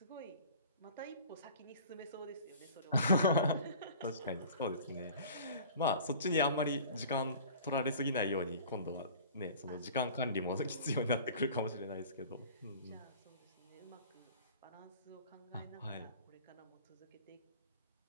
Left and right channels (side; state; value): both; inverted; correlation -0.44